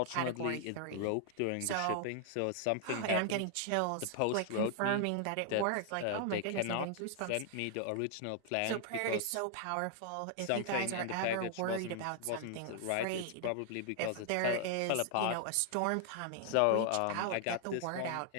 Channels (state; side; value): different; both; correlation 0.00